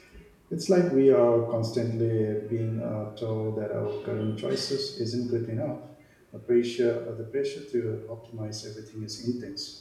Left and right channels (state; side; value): identical; both; correlation 1.00